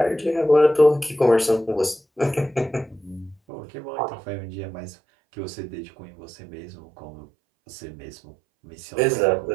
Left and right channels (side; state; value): left; drops out; at 3.4 s